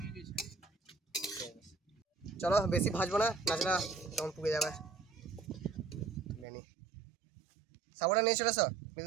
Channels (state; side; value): drops out; left; at 6.5 s